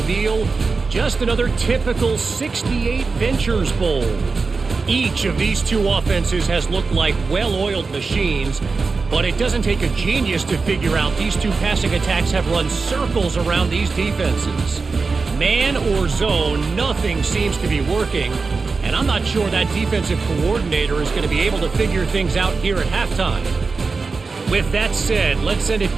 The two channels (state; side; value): quieter; left; 4.4 dB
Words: just another typical 68 Ventures Bowl. Each of these 2 offenses has looked like well-oiled machines, but it doesn't take a genius to figure out these 2 passing attacks have run circles around these defenses. Man or zone, nothing seems to be working, and I'm not sure that defensive coordinator is going to be able to figure things out here at halftime. With that said, let's send it